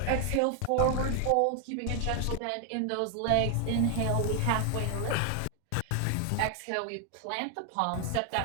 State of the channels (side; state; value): both; different; correlation 0.00